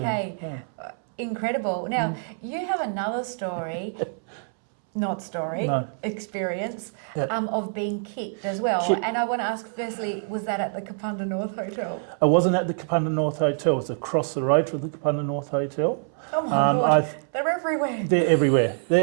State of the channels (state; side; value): silent; left; 61 dB below the other